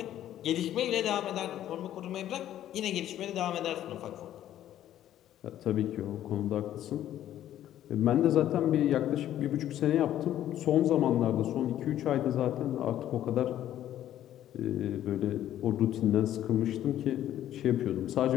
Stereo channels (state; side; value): quieter; right; 12.0 dB